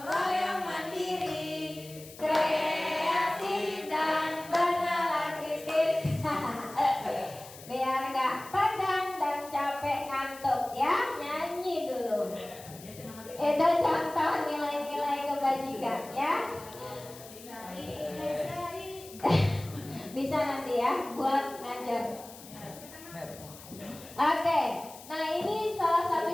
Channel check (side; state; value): left; noise; hiss, 17 dB below the sound